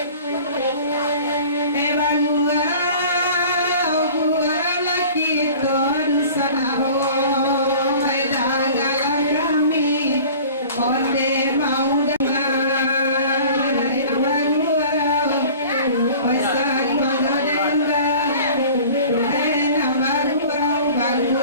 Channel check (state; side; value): inverted; both; correlation -0.44